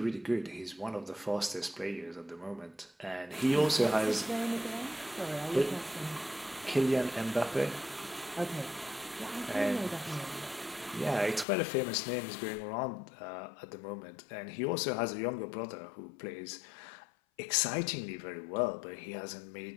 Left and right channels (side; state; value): right; drops out; at 11.5 s